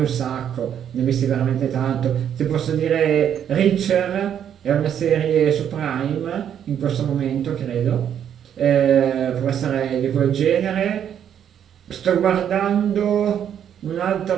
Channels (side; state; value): left; quieter; 9.2 dB